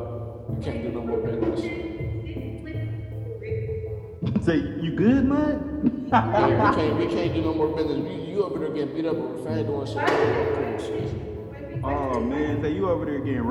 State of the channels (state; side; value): identical; both; correlation 1.00